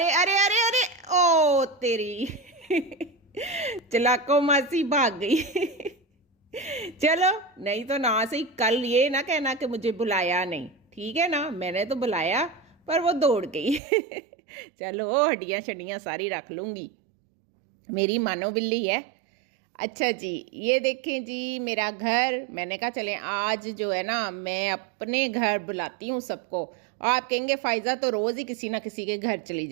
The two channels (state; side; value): drops out; left; at 13.8 s